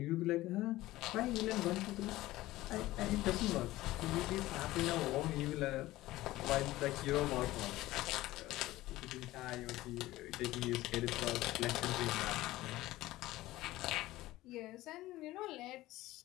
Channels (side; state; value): right; quieter; 17.0 dB